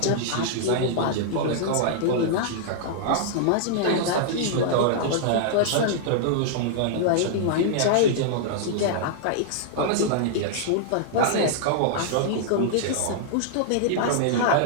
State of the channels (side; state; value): both; different; correlation -0.01